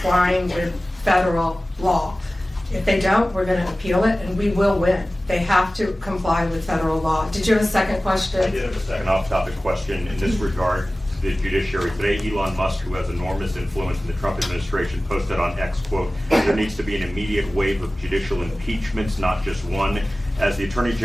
with federal law. If they don't, we're going to appeal it, and we will win. They have to comply with federal law. Did you have a second question? I did have a second off-topic question in this regard. The judiciary today, Elon Musk, who has enormous influence in the Trump administration, posted on X, quote, "There needs to be an immediate wave of judicial impeachments, not just one." As the Attorney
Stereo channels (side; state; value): both; normal; correlation 0.97